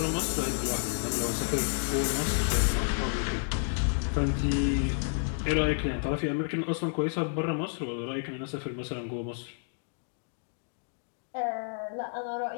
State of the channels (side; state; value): right; silent; digital silence